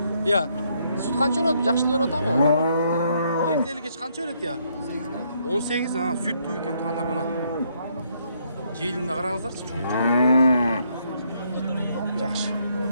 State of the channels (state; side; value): inverted; both; correlation -0.72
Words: Я. Süt kança berет? Жакшы берип атабы? Эртели кеч канча берет я? 18, süt туу экен тугандар мына. Желинде караңыздарчы, чоң. Жакшы.